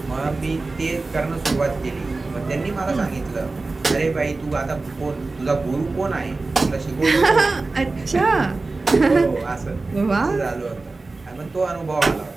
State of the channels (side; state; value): left; quieter; 3.5 dB